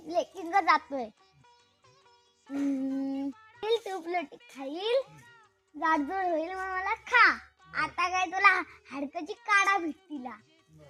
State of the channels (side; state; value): both; identical; correlation 1.00